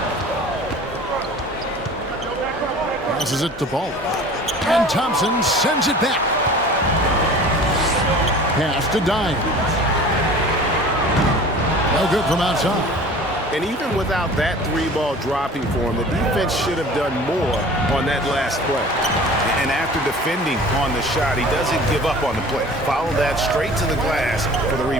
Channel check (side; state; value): both; normal; correlation 0.43